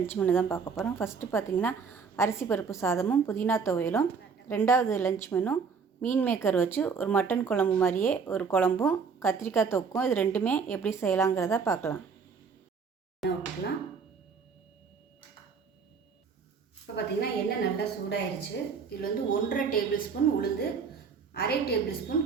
மெனு தான் பார்க்க போகிறோம். ஃபஸ்ட்டு பார்த்திங்கன்னா அரிசி பருப்பு சாதமும் புதினா துவையலும். ரெண்டாவது லஞ்ச் மெனு மீன் மேக்கர் வச்சு ஒரு மட்டன் குழம்பு மாதிரியே ஒரு குழம்பும் கத்திரிக்காய் தொக்கும். இது ரெண்டுமே எப்படி செய்யலாங்கிறத பார்க்கலாம். விட்டுக்கலாம். இப்போ பார்த்திங்கன்னா எண்ணெய் நல்லா சூடாயிருச்சு. இதில் வந்து 1.5 டேபிள் ஸ்பூன் உளுந்து, 1/2 டேபிள் ஸ்பூன்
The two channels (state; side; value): quieter; left; 5.6 dB